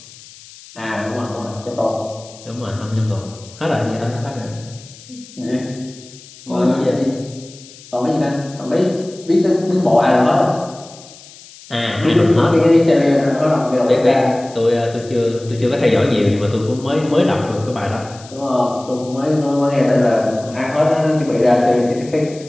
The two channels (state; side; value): noise; left; hiss, 20 dB below the sound